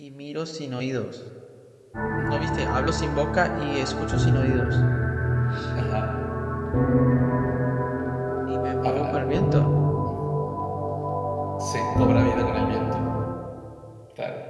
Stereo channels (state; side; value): identical; both; correlation 1.00